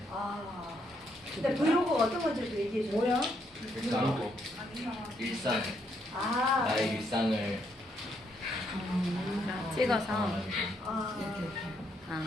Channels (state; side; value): normal; both; correlation 0.75